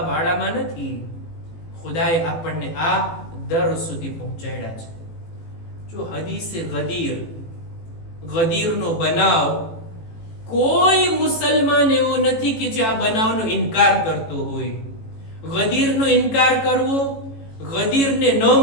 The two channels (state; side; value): late; right; 18 ms